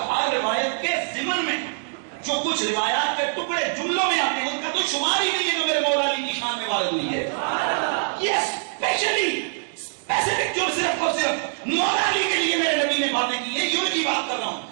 ہر روایت کے ضمن میں جو کچھ روایات کے ٹکڑے جملوں میں آتے ہیں ان کا تو شمار ہی نہیں ہے جو میرے مولا علی کی شان میں وارد ہوئی ہے۔ یہ اسپیشلی اسپیسیفک جو صرف اور صرف مولا علی کے لیے میرے نبی نے باتیں کی ہیں، یہ ان کی بات کر رہا ہوں،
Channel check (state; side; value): silent; left; digital silence